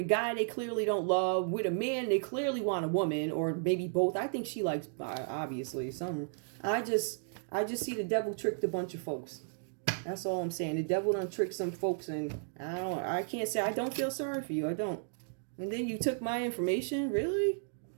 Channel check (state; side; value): silent; left; digital silence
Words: guy they clearly don't love, with a man they clearly want a woman, or maybe both. I think she likes, obviously, some. I just see the devil tricked a bunch of folks. That's all I'm saying. The devil done tricked some folks, and I can't say I don't feel sorry for you. I don't. And then you took my information, really?